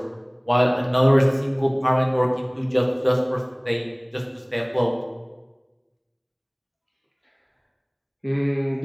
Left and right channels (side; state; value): both; identical; correlation 1.00